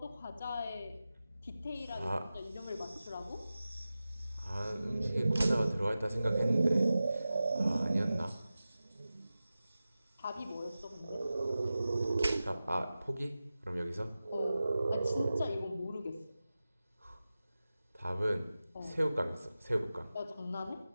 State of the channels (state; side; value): inverted; both; correlation -0.95